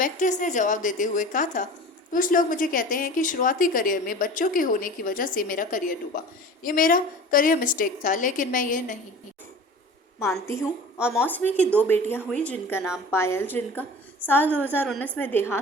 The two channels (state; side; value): normal; both; correlation 0.39